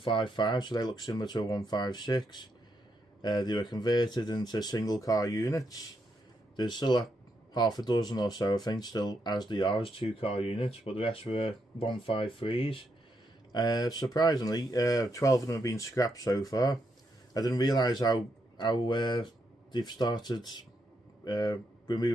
so they look similar to a 156. They were converted into single car units. There's still half a dozen or so, I think, still as they are as 2 car units, but the rest were 153s. Surprisingly, 12 of them have been scrapped so far. I didn't realise how they've started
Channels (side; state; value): both; normal; correlation 0.80